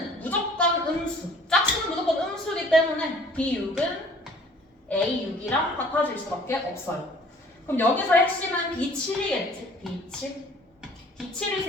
무조건 음수. 짝수는 무조건 음수이기 때문에 b6은 a6이랑 같아질 수밖에 없어요. 그럼 여기서 핵심은 b7이겠지. b7. b7을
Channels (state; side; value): normal; both; correlation 0.53